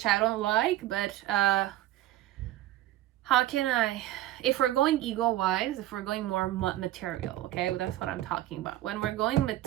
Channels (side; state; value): left; quieter; 14.7 dB